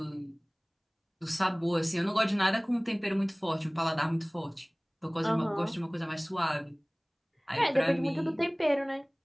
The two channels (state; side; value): identical; both; correlation 1.00